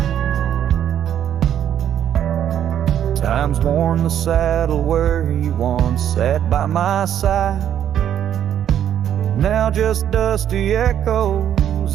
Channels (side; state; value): left; quieter; 10.0 dB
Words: Time's worn the saddle where you once sat by my side. Now just dusty